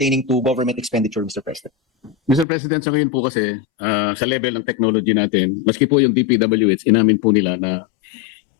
to government expenditure, Mr. President. Mr. President, sa ngayon po kasi, sa level ng technology natin, maski po yung DPWH, inamin po nila na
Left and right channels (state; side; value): drops out; right; at 2.5 s